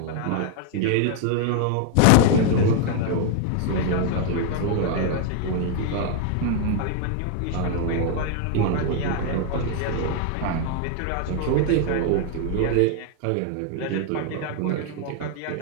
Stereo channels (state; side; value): different; both; correlation 0.00